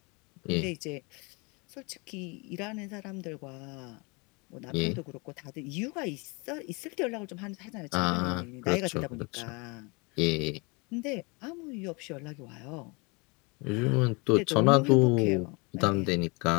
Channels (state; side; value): quieter; right; 29.4 dB